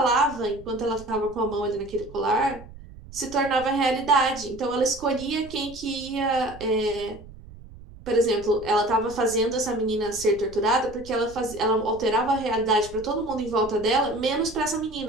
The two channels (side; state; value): right; noise; rumble, 18 dB below the sound